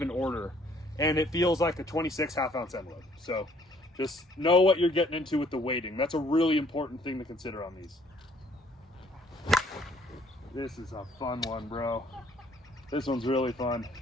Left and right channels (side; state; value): both; normal; correlation 0.62